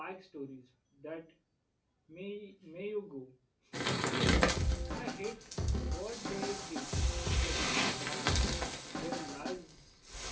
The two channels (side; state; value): both; identical; correlation 1.00